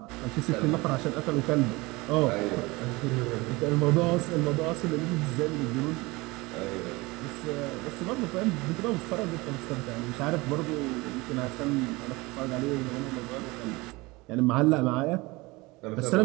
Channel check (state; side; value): quieter; left; 23.0 dB